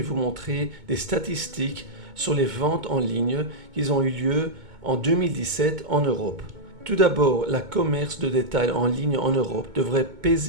vous montrer des statistiques sur les ventes en ligne qui ont eu lieu en 2017 en Europe. Tout d'abord, le commerce de détail en ligne en Europe devrait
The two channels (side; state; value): left; late; 2.2 ms